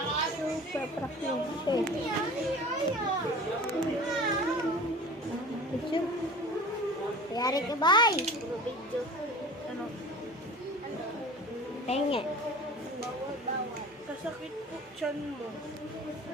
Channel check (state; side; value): normal; both; correlation 0.40